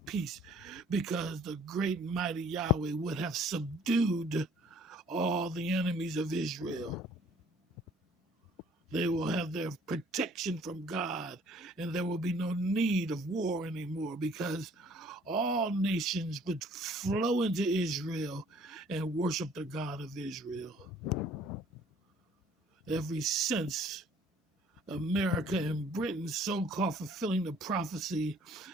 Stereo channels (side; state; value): both; normal; correlation 0.57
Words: peace, because the great and mighty Yahweh would have subdued all the enemies of Israel. They will have their protection from God, and there will be no need of war anymore, because all nations would flow into Israel and worship the God of Israel. Ever since America and Britain so-called fulfilling the prophecy